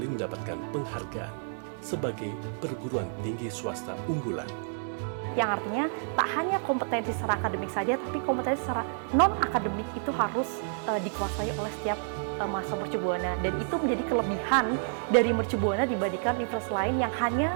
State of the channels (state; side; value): silent; left; digital silence